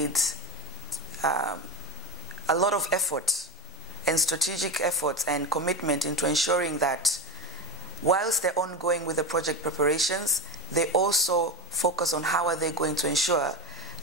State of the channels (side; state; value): both; normal; correlation 0.18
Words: a lot of effort and strategic efforts and commitment into ensuring that whilst they're ongoing with the project preparations, they also focus on how are they going to ensure